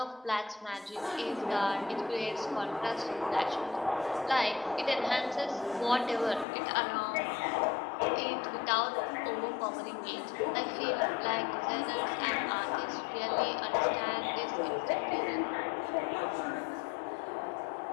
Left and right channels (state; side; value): drops out; right; at 6.5 s